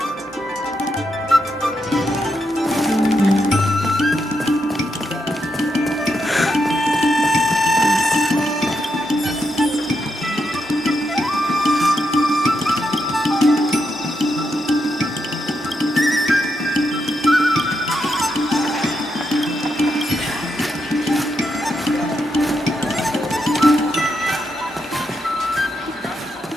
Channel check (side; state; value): both; normal; correlation 0.83